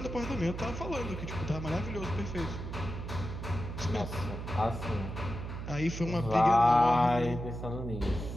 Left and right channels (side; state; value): right; noise; hum, 7 dB below the sound